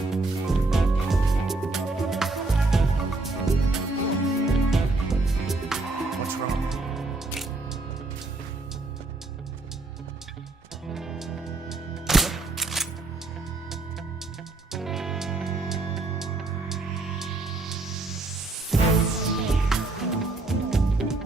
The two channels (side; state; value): left; quieter; 3.2 dB